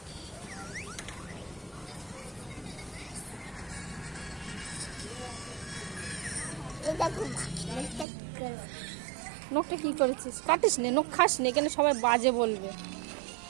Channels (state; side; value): drops out; left; at 8.1 s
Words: নখটা কি করেছিস? কাটিস নে, নখ খাস নে, কেন সবাই বাজে বলবে।